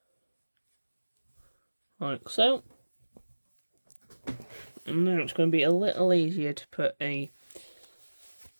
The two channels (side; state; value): both; inverted; correlation -1.00